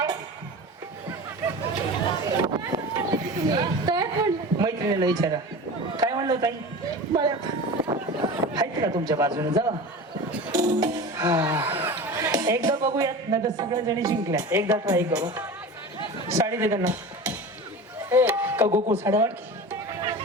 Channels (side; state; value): both; normal; correlation 0.32